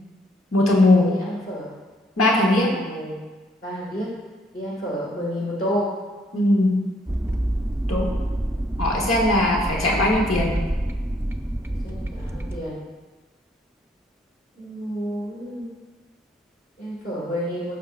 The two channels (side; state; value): both; normal; correlation 0.67